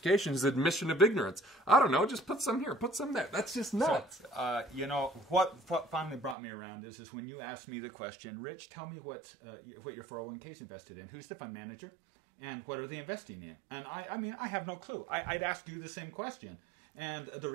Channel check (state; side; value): drops out; left; at 6.4 s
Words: is admission of ignorance. I don't know. Just put some here. Put some there. That's just nuts. So, what finally brought me around is when you asked me the question, Rich, tell me what your 401k is invested in. Who's the fund manager? And what are they investing in? And I have no clue. I'd ask you the same question. And the